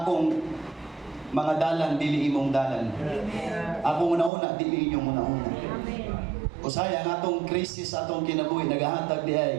mga dalan dili imong dalan. Ako una dili inyo una. Usaya ang atong krisis atong kinabuhi nagahatag di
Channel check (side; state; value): left; drops out; at 4.3 s